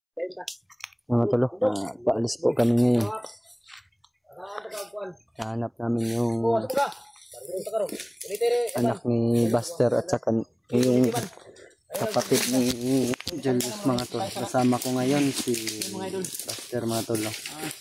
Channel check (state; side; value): identical; both; correlation 1.00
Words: Mga tolo, paalis po kami ngayon. Hanap namin yung anak ni Buster at saka yung kapatid ni Julius mga tolo. Kasama ko ngayon si Buster mga tolo.